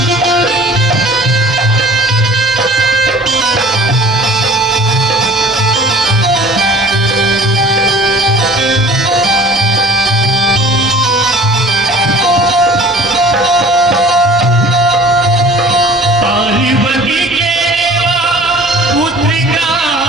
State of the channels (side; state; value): both; normal; correlation 0.46